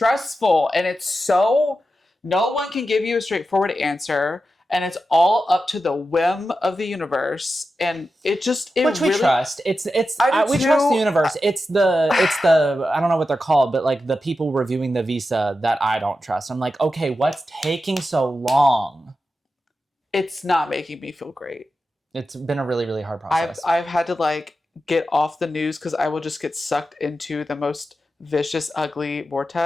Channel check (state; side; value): normal; both; correlation 0.91